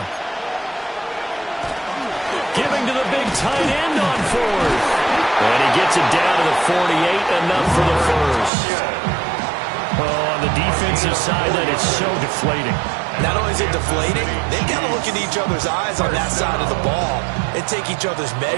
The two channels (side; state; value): left; drops out; at 8.5 s